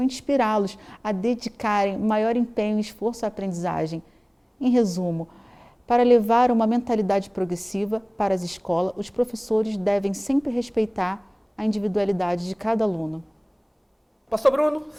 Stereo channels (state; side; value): identical; both; correlation 1.00